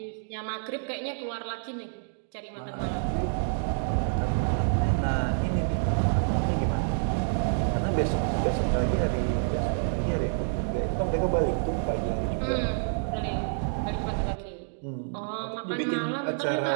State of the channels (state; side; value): silent; left; digital silence